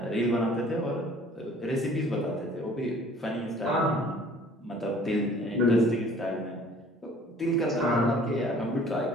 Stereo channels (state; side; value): normal; both; correlation 0.52